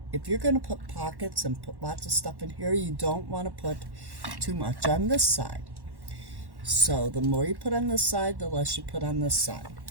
if you're going to put pockets and put lots of stuff in here, you don't want to put too much on this side. So, the more you put on this side, the less you put on this side.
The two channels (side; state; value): left; late; 1.1 ms